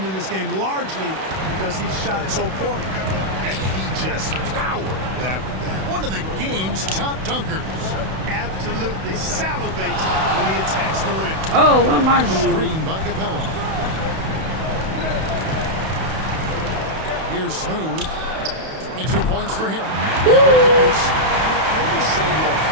in this game largely because he shot so poorly. He just powered that one down. One of the game's top dunkers. Absolutely salivates when he attacks the rim. Oh, what am I doing? Screen by Capella. Here's Smooth. 22 points for him. Woo! Counts. You know, maybe save that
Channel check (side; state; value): left; late; 31 ms